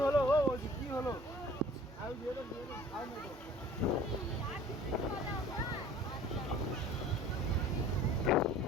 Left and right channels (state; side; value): normal; both; correlation 0.48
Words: ও জি কি হলো আই দিয়ে দাও আই না দাও